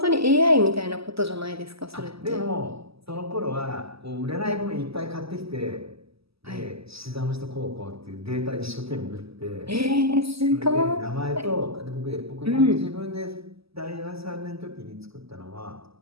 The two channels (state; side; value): late; left; 0.77 ms